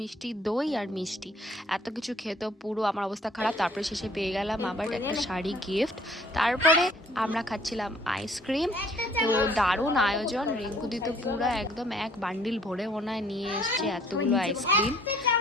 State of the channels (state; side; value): normal; both; correlation 0.58